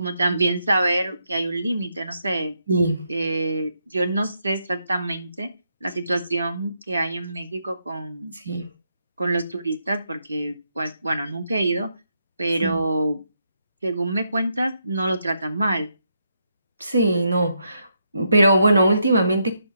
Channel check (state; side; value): inverted; both; correlation -0.79